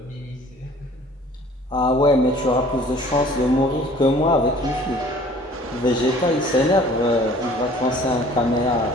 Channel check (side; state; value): both; normal; correlation 0.51